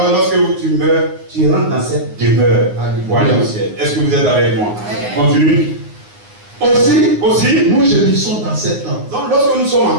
lorsque tu meurs, tu rentres dans cette demeure pour aller au ciel. Est-ce que vous êtes avec moi? Continue. Aussi, nous gémissons dans cette tente. Donc, lorsque nous sommes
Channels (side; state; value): left; late; 9.7 ms